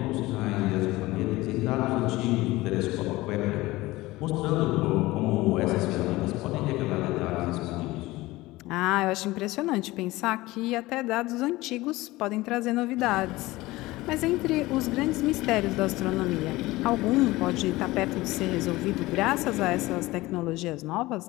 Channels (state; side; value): quieter; right; 19.3 dB